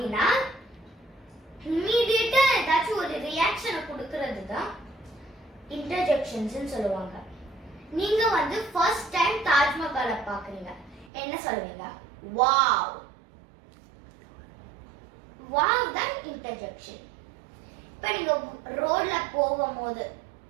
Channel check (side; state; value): left; drops out; at 11.1 s